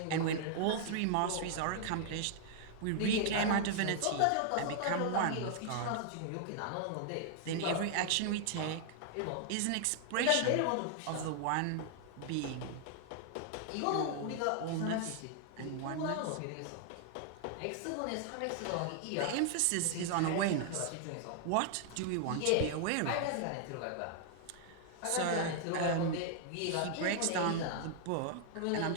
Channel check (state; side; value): different; both; correlation 0.00